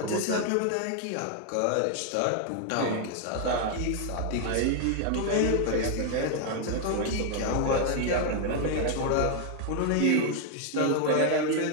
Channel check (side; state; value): both; different; correlation 0.00